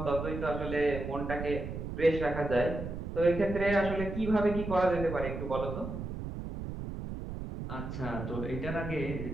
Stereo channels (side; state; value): right; noise; rumble, 6 dB below the sound